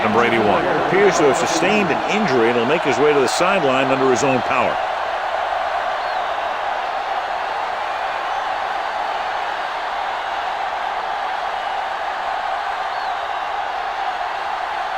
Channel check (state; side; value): identical; both; correlation 1.00